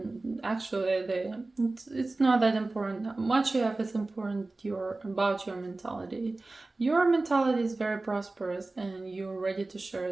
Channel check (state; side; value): quieter; left; 3.2 dB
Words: actually it's not that important. How much you have is important about your mentality. Your mentality is very prosperous, and you're ready to